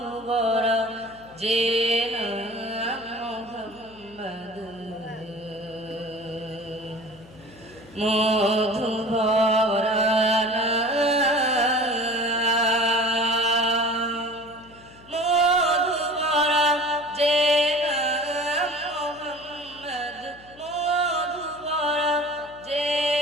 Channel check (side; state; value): left; noise; hum, 23 dB below the sound